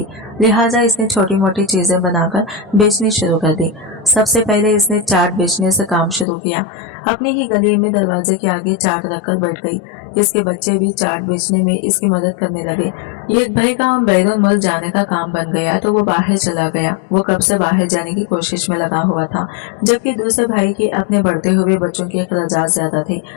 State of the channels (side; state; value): right; drops out; at 6.2 s